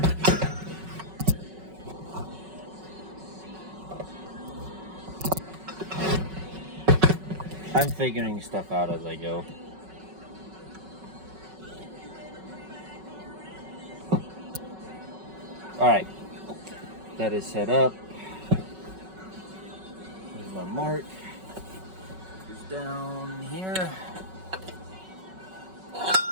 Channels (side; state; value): left; late; 5.3 ms